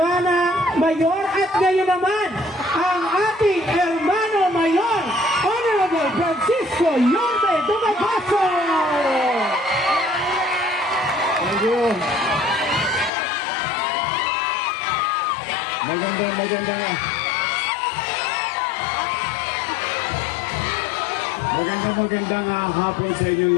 Mayor at ngayon naman ang ating Hermano Mayor Honorable Francisco Yorme Dumagoso. Thank you. Magandang hapon sa inyong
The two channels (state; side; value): drops out; right; at 13.1 s